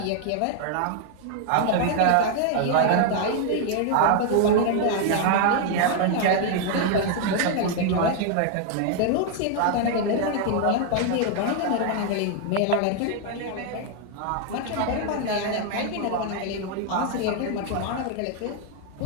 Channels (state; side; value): different; both; correlation 0.00